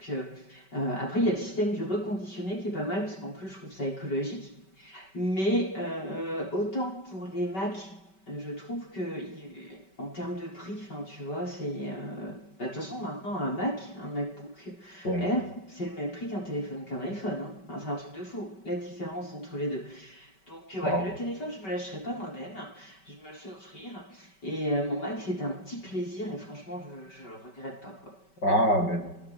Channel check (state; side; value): late; right; 5.2 ms